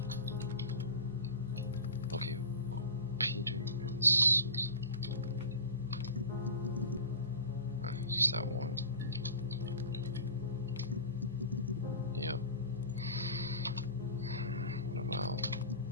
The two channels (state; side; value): inverted; both; correlation -0.34